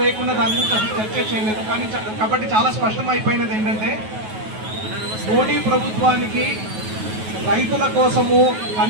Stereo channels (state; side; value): late; left; 9.3 ms